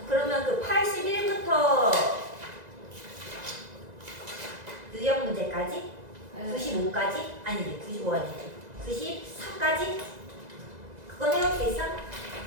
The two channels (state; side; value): late; left; 2.0 ms